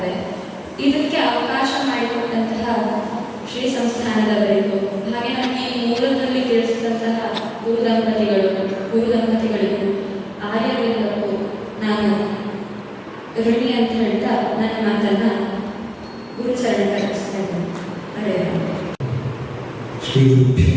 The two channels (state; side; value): identical; both; correlation 1.00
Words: ಇದಕ್ಕೆ ಅವಕಾಶ ಮಾಡಿಕೊಟ್ಟಂತಹ ಶ್ರೀ ಸಂಸ್ಥಾನದವರಿಗೂ, ಹಾಗೆ ನಮಗೆ ಈ ಮೂಲದಲ್ಲಿ ತಿಳಿಸಿದಂತಹ ಗುರು ದಂಪತಿಗಳಿಗೂ ಆರ್ಯವರಿಗೂ ನಾನು ಋಣಿ ಅಂತ ಹೇಳ್ತಾ ನನ್ನ ಮಾತನ್ನ ಗುರುಚರಣ ಕಲಿಸ್ತಾ ಇದ್ದೇನೆ. ಹರೇ ರಾಮ. ಶ್ರೀ ಗುರುಭ್ಯೋ